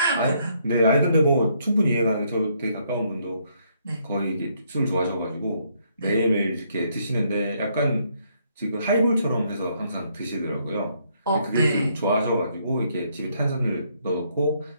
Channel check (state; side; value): inverted; both; correlation -0.71